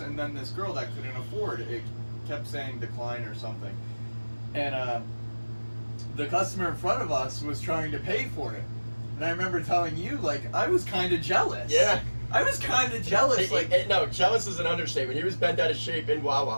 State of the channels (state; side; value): inverted; both; correlation -1.00